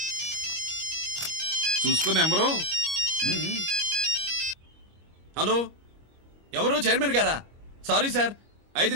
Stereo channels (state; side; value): late; left; 25 ms